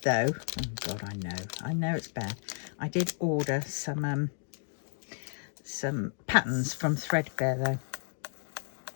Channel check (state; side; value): silent; right; digital silence